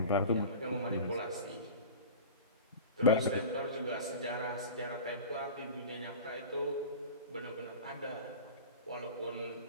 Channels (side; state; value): both; inverted; correlation -0.35